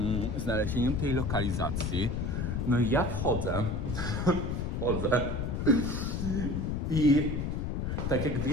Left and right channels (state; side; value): noise; left; rumble, 1 dB below the sound